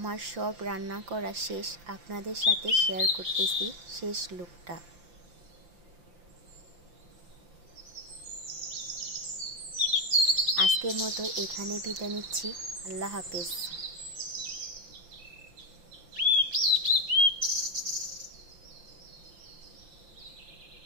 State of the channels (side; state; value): left; late; 5.8 ms